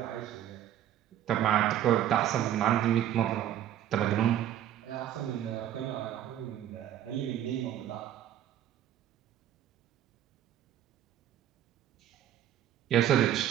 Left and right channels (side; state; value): left; quieter; 11.3 dB